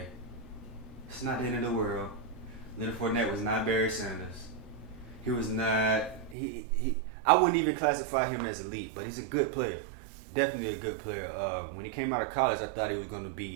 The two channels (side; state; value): left; drops out; at 6.4 s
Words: It's not the end of the world. Leonard Fournette was not Barry Sanders. He was not, I wouldn't even classify him as elite, but he's a good player. Definitely a good player. When he came out of college, I thought he was going to